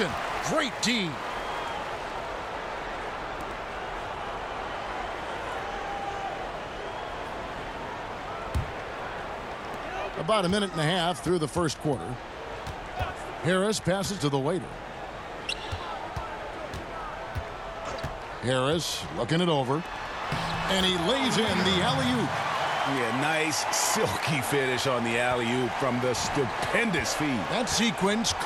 Great D. About a minute and a half through the first quarter. Harris passes to the waiter. Harris looking it over. And he lays in the alley-oop. Yeah, nice silky finish on the alley-oop from the stupendous feed. That sequence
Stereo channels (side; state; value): both; identical; correlation 1.00